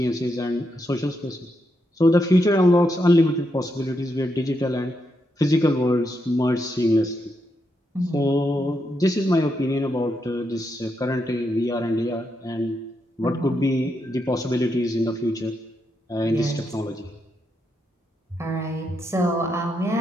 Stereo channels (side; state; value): both; normal; correlation 0.82